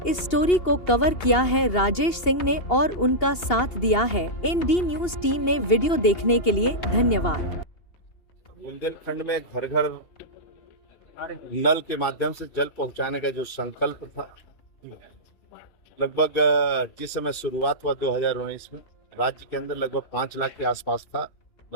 इस स्टोरी को कवर किया है राजेश सिंह ने और उनका साथ दिया है एनडी न्यूज टीम ने। वीडियो देखने के लिए धन्यवाद। बुंदेलखंड में घर घर नल के माध्यम से जल पहुंचाने का जो संकल्प था, लगभग जिस समय शुरुआत हुआ 2019 में राज्य के अंदर लगभग 5 लाख के आसपास था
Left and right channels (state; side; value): late; right; 2.8 ms